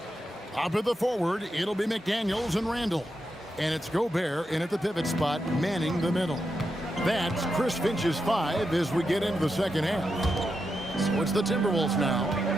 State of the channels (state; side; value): normal; both; correlation 0.86